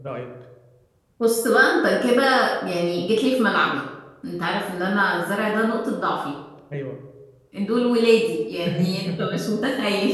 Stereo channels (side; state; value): both; identical; correlation 1.00